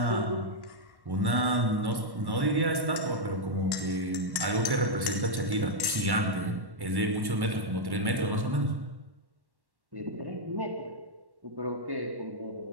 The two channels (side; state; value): left; late; 1.1 ms